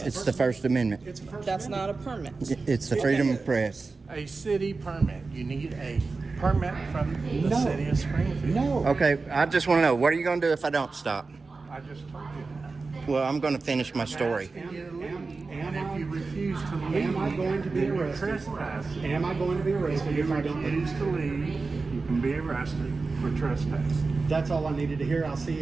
it's us. the First Amendment. It's a first That's Amendment. not a permit. It's the freedom of press. A city permit. You need a permit from the No. city of Springfield. No. Okay, I just want to know, what are you going to do if I don't stop? I just told you. Well, I'm going to finish my story. And if you refuse to leave, Am I going to be then you're arrested? trespassing. Am I going to be arrested If if you I don't leave? refuse to leave, you can be arrested for trespassing. That's all I needed to hear. I'll see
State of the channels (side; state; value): left; quieter; 4.0 dB